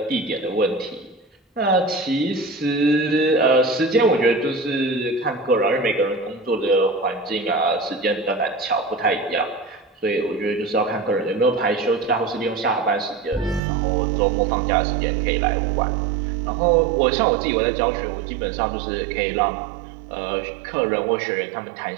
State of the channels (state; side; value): drops out; left; at 13.6 s